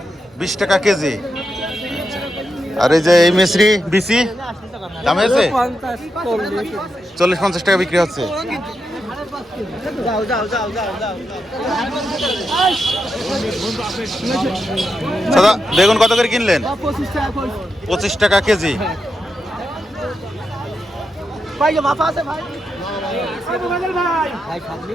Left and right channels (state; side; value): normal; both; correlation 0.86